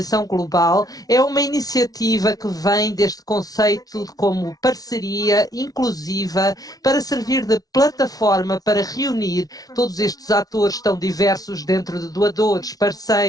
global é uma iniciativa que vem deste conceito como parceria inclusiva para servir de plataforma para reunir todos estes atores tão diversos dentro de doadores,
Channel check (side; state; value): right; late; 0.18 ms